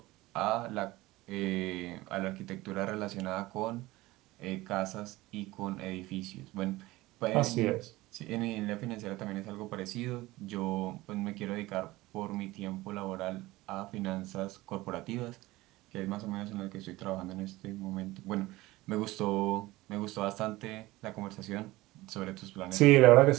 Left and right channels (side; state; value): left; quieter; 19.1 dB